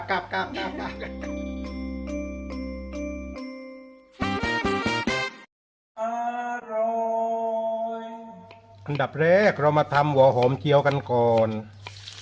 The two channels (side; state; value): both; identical; correlation 1.00